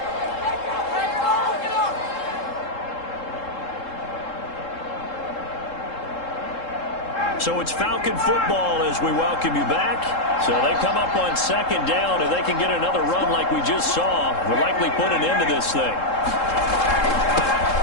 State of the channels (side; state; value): right; late; 3.7 ms